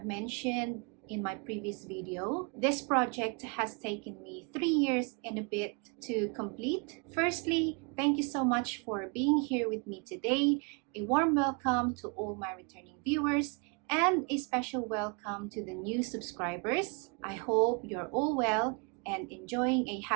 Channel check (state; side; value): quieter; left; 34.3 dB